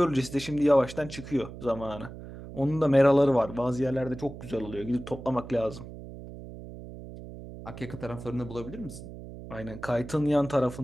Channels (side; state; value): right; noise; hum, 13 dB below the sound